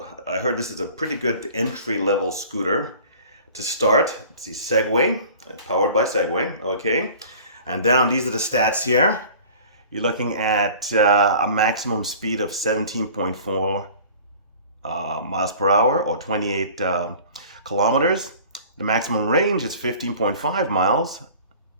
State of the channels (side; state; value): both; inverted; correlation -0.45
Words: I heard this is a pretty good entry-level scooter to start. It's the Segway, powered by Segway, okay? And down, these are the stats here. You're looking at a maximum speed of 17.4 miles per hour, or 28 kilometers. The maximum range is 15.5 miles,